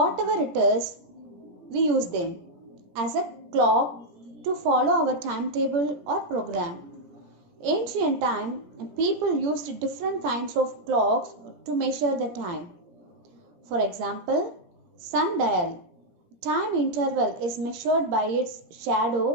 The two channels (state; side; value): late; left; 17 ms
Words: it is, we use them as a clock to follow our timetable or program. Ancient time, people used different kinds of clocks to measure the time. For example, sundial. Time interval is measured by its